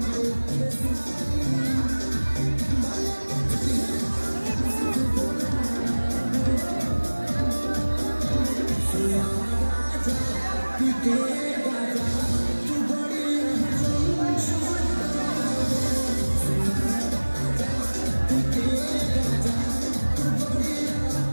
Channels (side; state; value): both; inverted; correlation -1.00